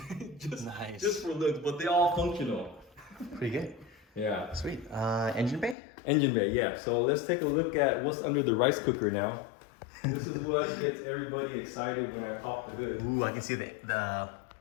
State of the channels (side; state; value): right; drops out; at 5.8 s